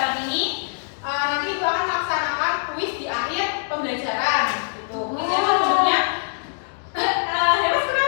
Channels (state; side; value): silent; right; digital silence